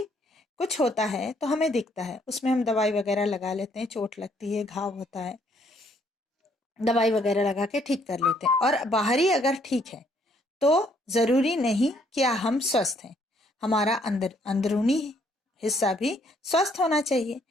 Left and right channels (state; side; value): normal; both; correlation 0.67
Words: कुछ होता है तो हमें दिखता है, उसमें हम दवाई वगैरह लगा लेते हैं, चोट लगती है, घाव होता है, दवाई वगैरह लगा के ठीक कर लेते हैं। और बाहरी अगर ठीक है तो जरूरी नहीं कि हम स्वस्थ हैं, हमारा अंदरूनी हिस्सा भी स्वस्थ होना चाहिए।